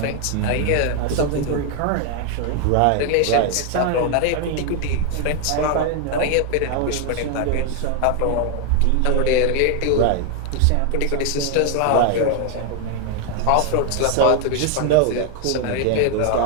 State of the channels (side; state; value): both; different; correlation 0.01